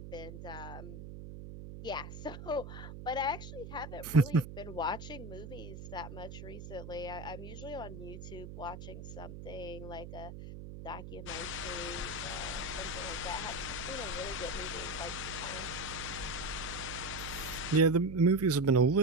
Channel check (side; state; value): right; noise; hum, 10 dB below the sound